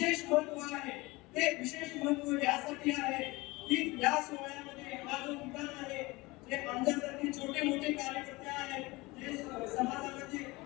महत्व आहे. ते विशेष महत्व यासाठी आहे की या सोहळ्यामध्ये हा जो ठिकाण आहे जे आमच्यासारखे छोटे मोठे कार्यकर्ते आहेत जे समाजामध्ये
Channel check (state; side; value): quieter; right; 22.5 dB